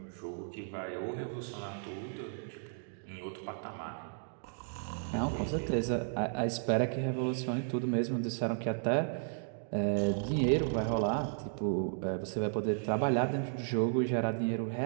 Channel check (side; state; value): left; silent; digital silence